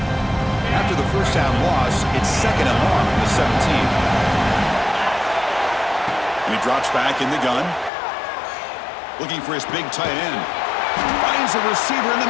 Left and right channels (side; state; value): right; drops out; at 7.9 s